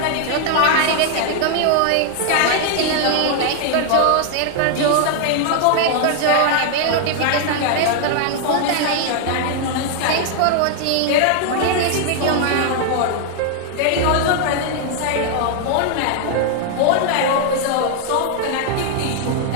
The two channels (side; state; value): both; different; correlation 0.00